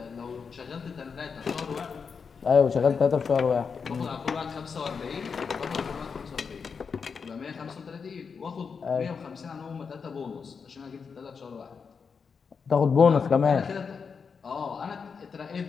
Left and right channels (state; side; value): quieter; right; 5.7 dB